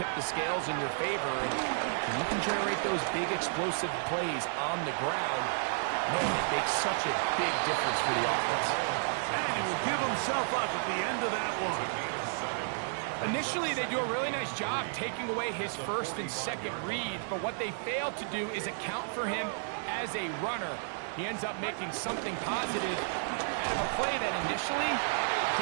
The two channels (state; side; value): silent; left; digital silence